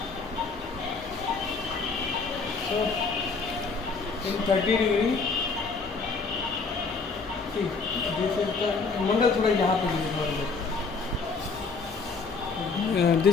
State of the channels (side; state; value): right; quieter; 4.5 dB